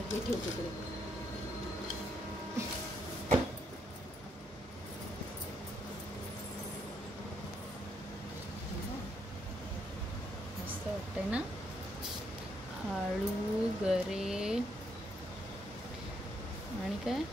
तिकडे। मस्त वाटतंय ना। आळू, गरे आणि काय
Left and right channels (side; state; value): both; normal; correlation 0.75